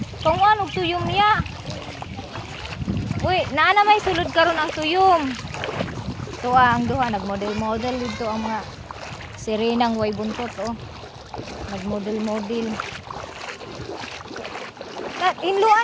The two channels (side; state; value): both; identical; correlation 1.00